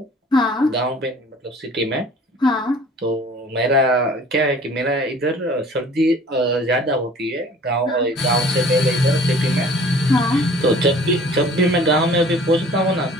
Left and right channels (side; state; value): both; normal; correlation 0.49